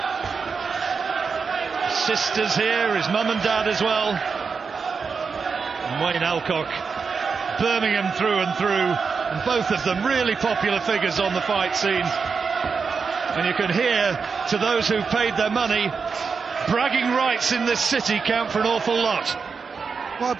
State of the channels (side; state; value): left; quieter; 5.4 dB